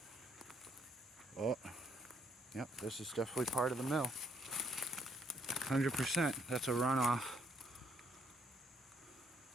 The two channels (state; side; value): normal; both; correlation 0.70